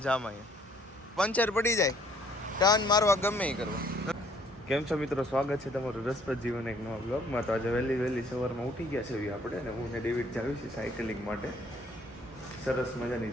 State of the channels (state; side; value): normal; both; correlation 0.62